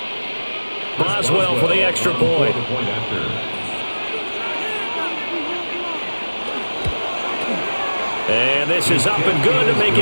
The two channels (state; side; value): inverted; both; correlation -1.00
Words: Boswell for the extra point. And this is up and good to make